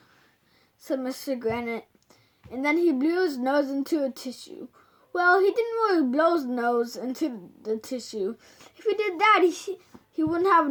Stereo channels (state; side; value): identical; both; correlation 1.00